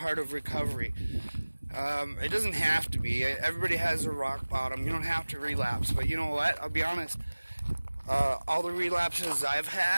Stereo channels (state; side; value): inverted; both; correlation -1.00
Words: of recovery. It doesn't have to be. Everybody has a rock bottom. You don't have to relapse. But you know what? I'll be honest. All the relapses I've